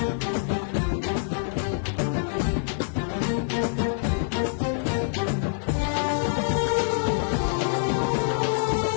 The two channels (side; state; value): right; silent; digital silence